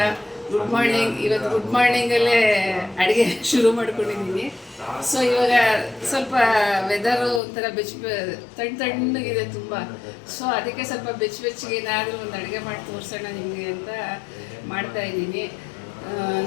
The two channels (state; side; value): drops out; right; at 7.4 s